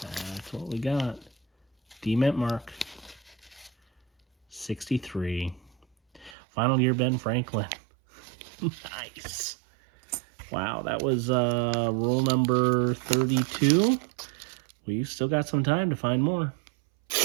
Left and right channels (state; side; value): drops out; left; at 6.4 s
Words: That's what we got. D-mint mark. 63. Final year Ben Franklin. Nice. Wow, that was roll number 32. We've still got some time to find more.